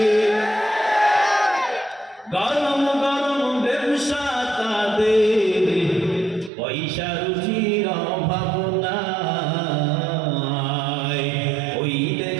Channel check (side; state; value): left; drops out; at 6.5 s